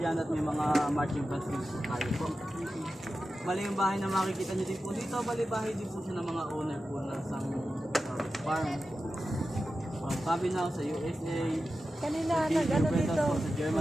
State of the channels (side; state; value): both; normal; correlation 0.92